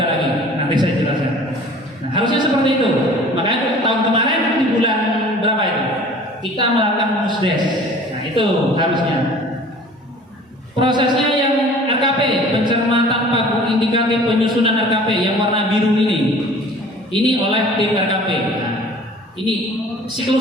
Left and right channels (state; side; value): normal; both; correlation 0.47